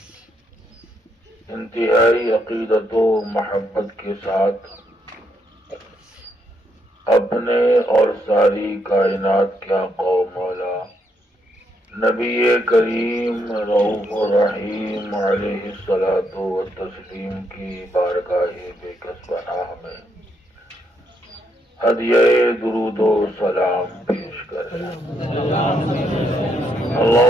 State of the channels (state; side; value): normal; both; correlation 0.76